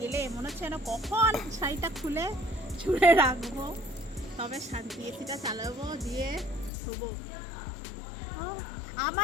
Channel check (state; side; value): drops out; right; at 6.7 s